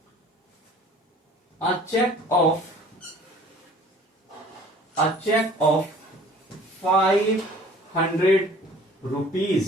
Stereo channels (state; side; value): normal; both; correlation 0.49